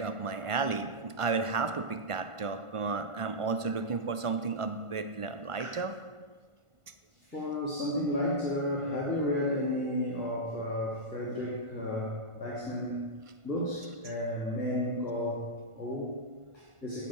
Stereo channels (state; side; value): late; left; 1.5 ms